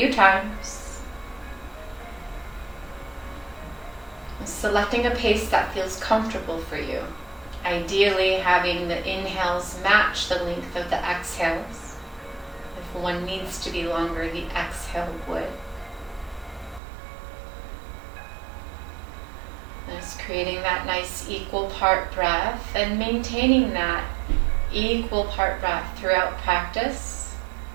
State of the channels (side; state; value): left; drops out; at 16.8 s